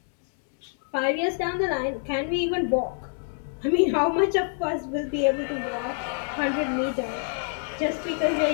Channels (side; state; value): right; silent; 60 dB below the other